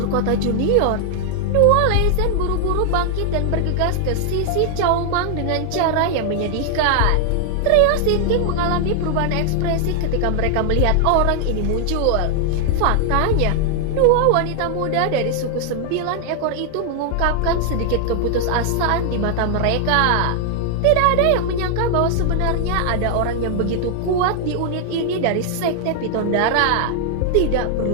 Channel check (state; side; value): different; both; correlation 0.00